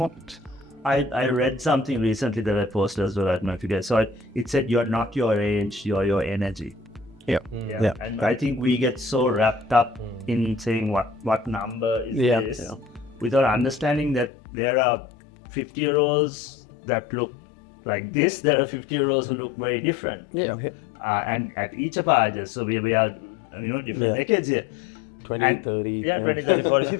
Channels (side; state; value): right; drops out; at 14.3 s